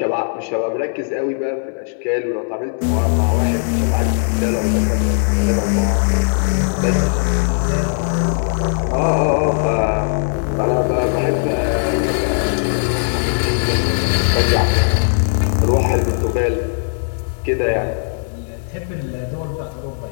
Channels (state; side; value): silent; right; digital silence